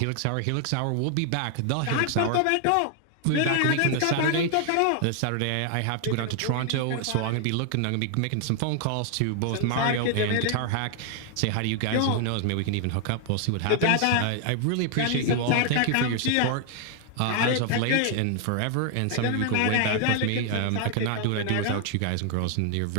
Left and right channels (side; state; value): both; different; correlation 0.00